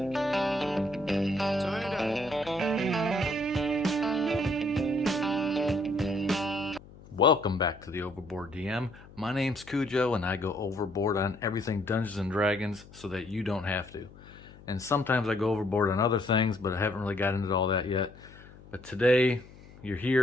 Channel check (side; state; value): left; noise; hum, 21 dB below the sound